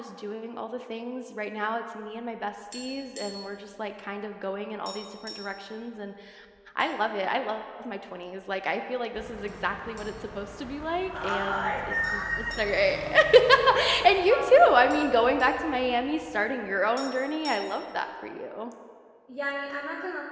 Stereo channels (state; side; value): identical; both; correlation 1.00